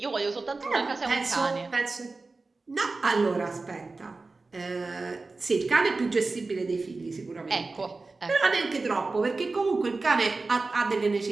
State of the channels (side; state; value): left; quieter; 3.7 dB